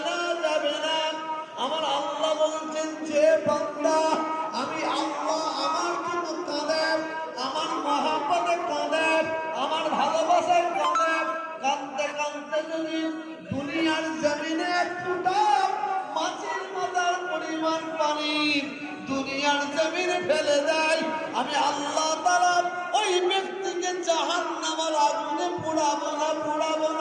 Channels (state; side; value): identical; both; correlation 1.00